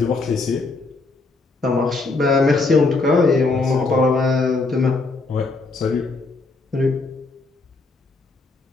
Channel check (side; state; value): right; quieter; 3.6 dB